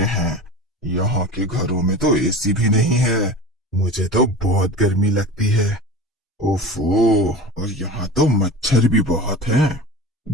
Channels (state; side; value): normal; both; correlation 0.34